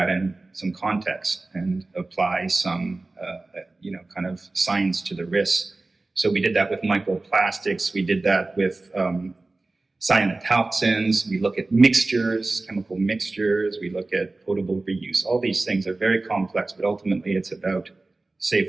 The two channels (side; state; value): left; quieter; 3.2 dB